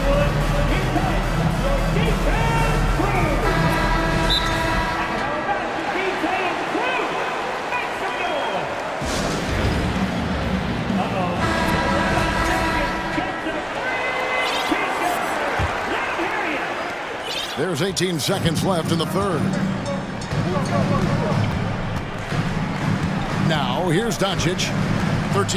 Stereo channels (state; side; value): identical; both; correlation 1.00